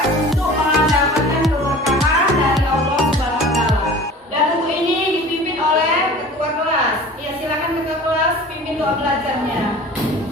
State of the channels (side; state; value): both; normal; correlation 0.41